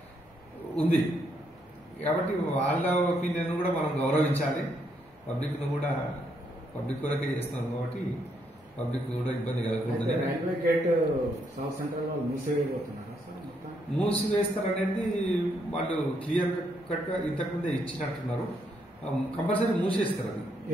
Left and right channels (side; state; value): both; normal; correlation 0.75